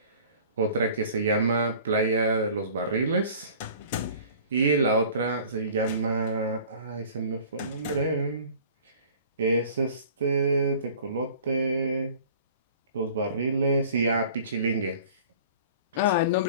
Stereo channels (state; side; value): inverted; both; correlation -0.47